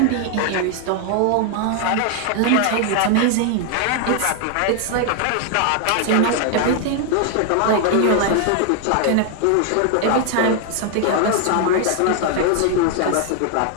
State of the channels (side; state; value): both; different; correlation 0.00